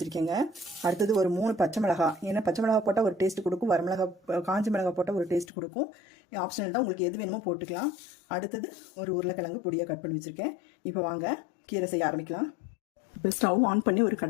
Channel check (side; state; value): right; drops out; at 5.5 s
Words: அடுத்தது ஒரு 3 பச்சை மிளகாய். ஏன்னா பச்சை மிளகாய் போட்டால் ஒரு டேஸ்ட் கொடுக்கும், காஞ்சி மிளகாய் போட்டால் ஒரு டேஸ்ட் கொடுக்கும். ஆப்ஷனல் தான், உங்களுக்கு எது வேணுமோ போட்டுக்கலாம். அடுத்தது ஒரு உருளைக்கிழங்கு பொடியாக கட் பண்ணி வச்சுருக்கேன். இப்போ வாங்க கீரை செய்ய ஆரம்பிக்கலாம். இப்போ ஸ்டவ் ஆன் பண்ணி ஒரு